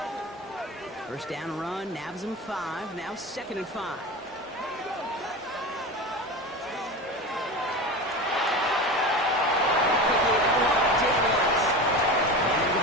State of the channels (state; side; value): normal; both; correlation 0.28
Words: First down run, nabs him 5, now 2nd and 5. Quickly out Daniels. And they're